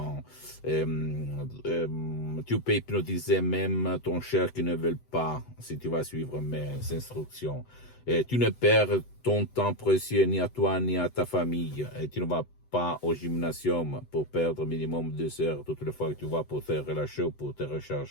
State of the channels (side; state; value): right; late; 8.0 ms